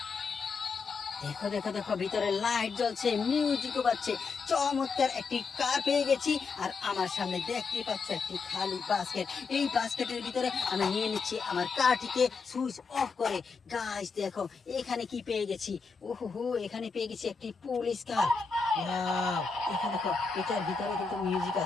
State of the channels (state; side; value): quieter; right; 4.8 dB